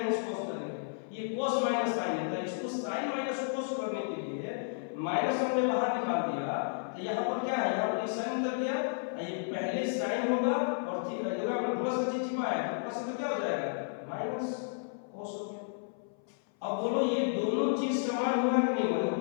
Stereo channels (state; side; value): silent; right; 55 dB below the other